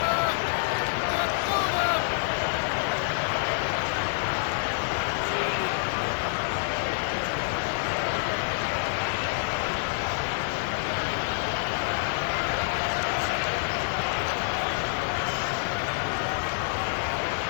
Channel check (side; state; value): right; silent; digital silence